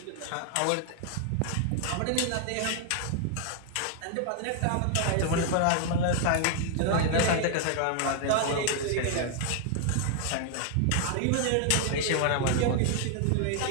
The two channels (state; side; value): different; both; correlation 0.00